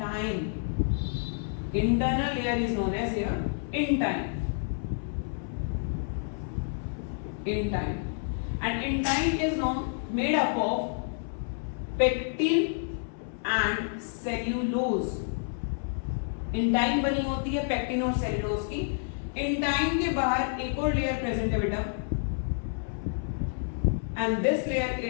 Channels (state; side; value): silent; right; 57 dB below the other